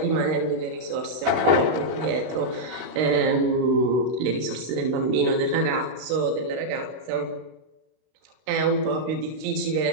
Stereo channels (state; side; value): late; left; 32 ms